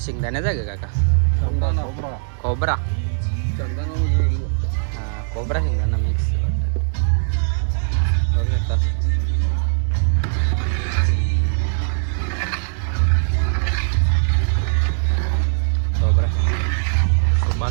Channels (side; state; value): left; silent; digital silence